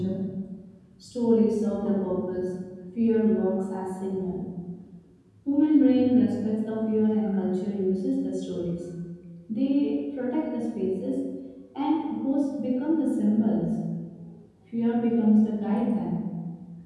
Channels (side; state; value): both; identical; correlation 1.00